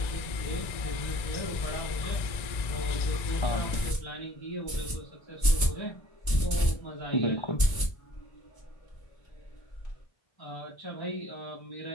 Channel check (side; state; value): right; late; 1.9 ms